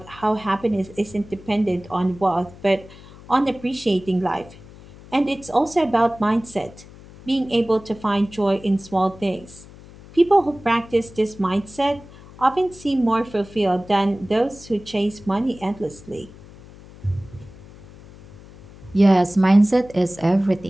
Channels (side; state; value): left; noise; hum, 20 dB below the sound